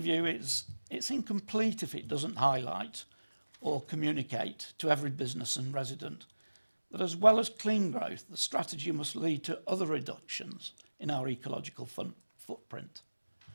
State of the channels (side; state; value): both; inverted; correlation -1.00